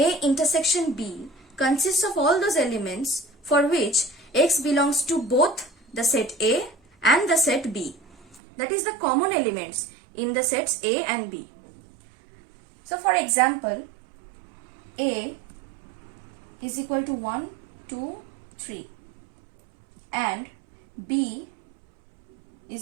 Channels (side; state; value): left; drops out; at 8.4 s